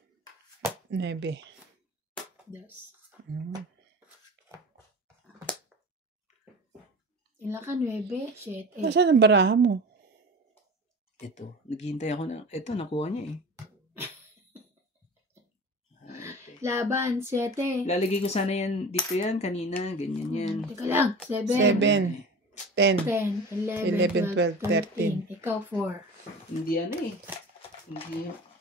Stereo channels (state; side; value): normal; both; correlation 0.35